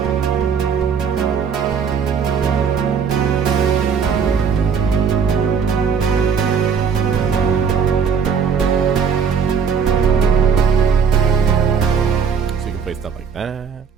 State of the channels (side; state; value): left; quieter; 6.4 dB